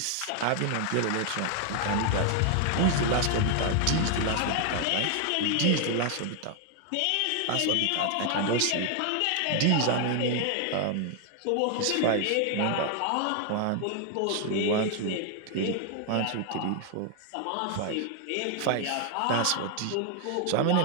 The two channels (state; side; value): different; both; correlation 0.00